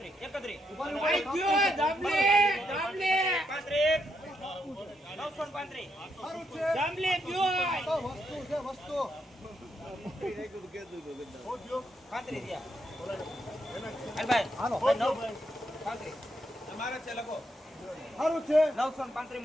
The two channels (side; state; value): both; normal; correlation 0.79